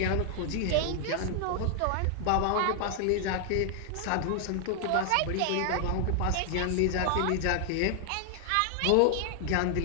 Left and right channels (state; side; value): different; both; correlation 0.00